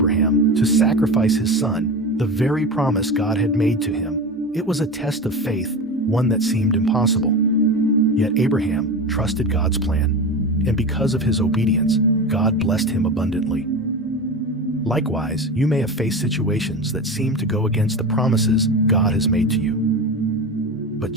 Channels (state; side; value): normal; both; correlation 0.26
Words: to sacrifice his son, the very promise God had made to him. It was a test of faith, one that seemed impossible. Yet Abraham trusted God's plan, and because of his obedience, God blessed him abundantly. Likewise, you may have faced situations that seem to go against the promises God has made to you. But